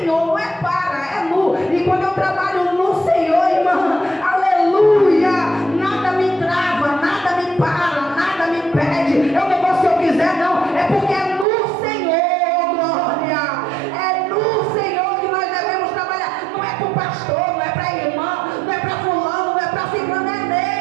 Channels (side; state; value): left; drops out; at 11.5 s